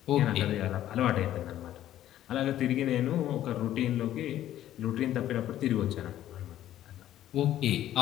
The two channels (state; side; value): quieter; right; 12.6 dB